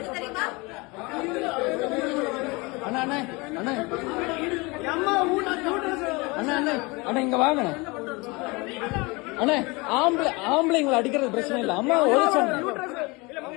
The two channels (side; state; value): right; quieter; 25.9 dB